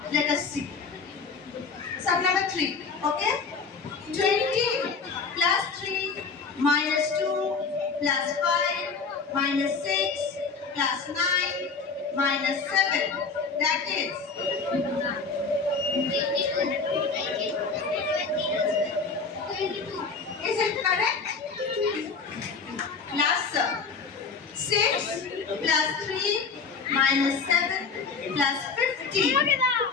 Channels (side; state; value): right; quieter; 4.9 dB